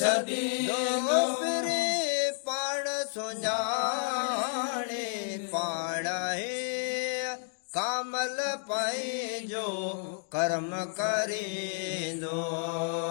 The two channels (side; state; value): right; silent; 57 dB below the other